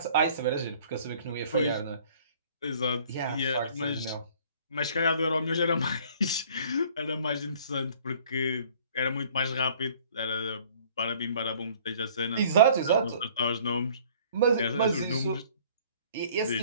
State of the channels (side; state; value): both; inverted; correlation -0.54